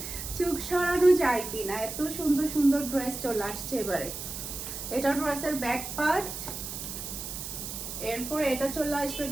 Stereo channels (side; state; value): right; noise; hiss, 7 dB below the sound